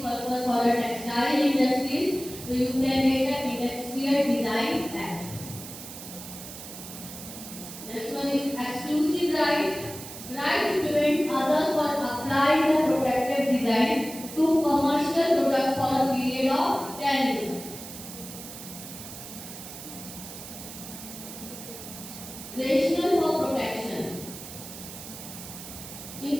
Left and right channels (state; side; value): noise; right; hiss, 12 dB below the sound